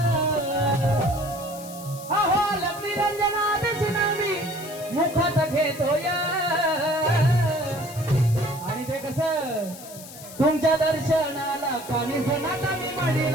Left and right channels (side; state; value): left; noise; hiss, 15 dB below the sound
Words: अहो लक्ष्मी रंजना देश नाव मी मुखात घेतोय। तुमच्या दर्शनाला काणी होणार मी